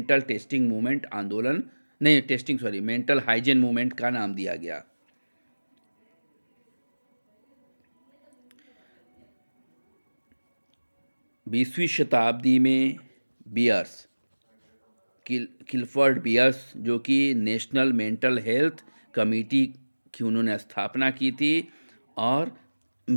टेस्टिंग मूवमेंट आंदोलन नहीं testing sorry mental hygiene movement का नाम दिया गया। बीसवीं शताब्दी में बियर्स किलफर्ड बियर्स, जो कि नेशनल मेंटल हेल्थ कमेटी की उन्होंने स्थापना की थी और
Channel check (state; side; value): inverted; both; correlation -1.00